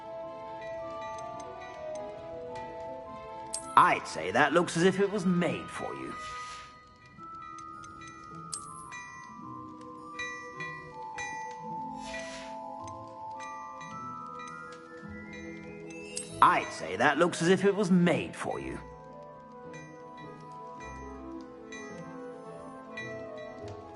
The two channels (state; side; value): identical; both; correlation 1.00